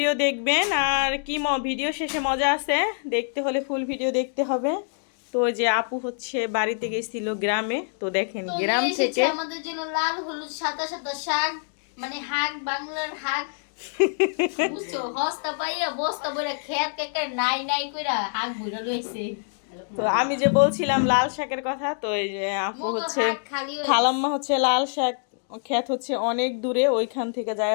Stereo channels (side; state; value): right; silent; digital silence